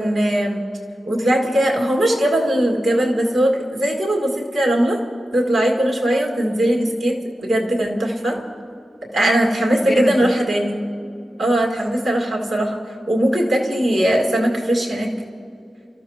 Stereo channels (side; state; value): both; normal; correlation 0.92